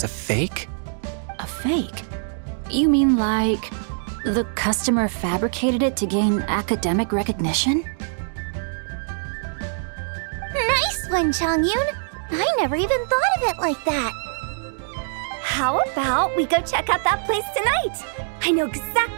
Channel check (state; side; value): silent; left; digital silence